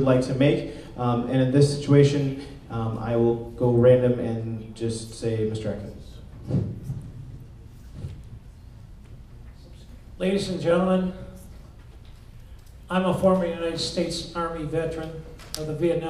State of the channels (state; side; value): identical; both; correlation 1.00